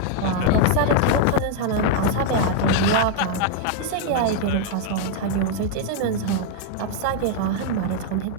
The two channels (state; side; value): different; both; correlation 0.00